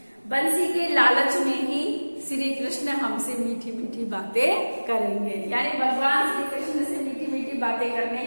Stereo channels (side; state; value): both; inverted; correlation -1.00